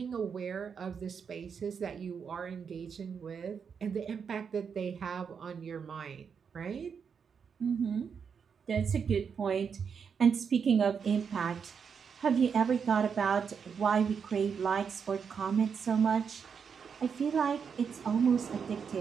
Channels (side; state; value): left; quieter; 6.5 dB